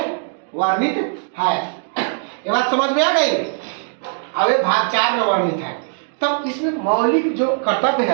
वर्णित है। ये बात समझ में आ गई? अब ये भाग 4 में वर्णित है। तब इसमें मौलिक जो कर्तव्य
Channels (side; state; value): left; silent; 66 dB below the other